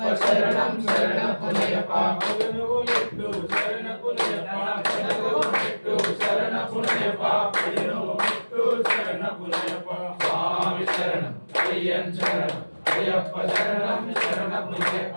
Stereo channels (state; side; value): inverted; both; correlation -1.00